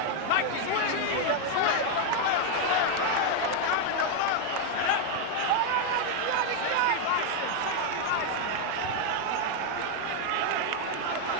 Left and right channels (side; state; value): both; different; correlation 0.01